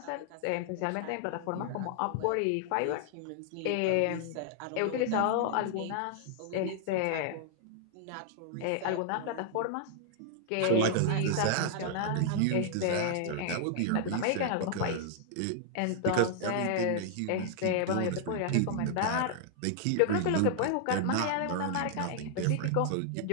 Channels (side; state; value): both; different; correlation -0.01